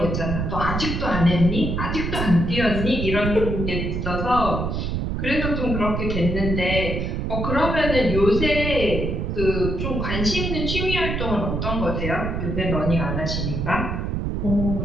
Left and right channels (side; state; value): right; noise; rumble, 2 dB below the sound